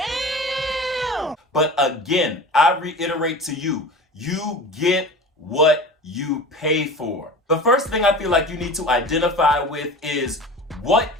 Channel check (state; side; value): normal; both; correlation 0.36